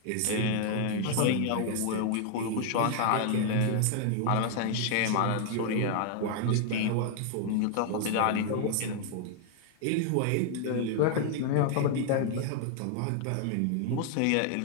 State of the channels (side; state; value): both; different; correlation 0.00